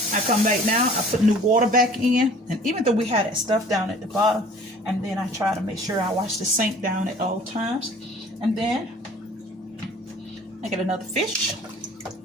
I come back now, I put new water back in, and even though we had that stuff down at the bottom, and then I try to make sure I wash the sink down at all times. And then I get another fish,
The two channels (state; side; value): normal; both; correlation 0.49